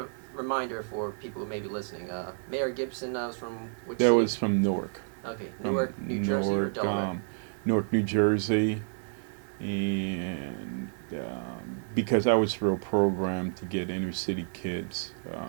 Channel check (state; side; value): silent; left; 58 dB below the other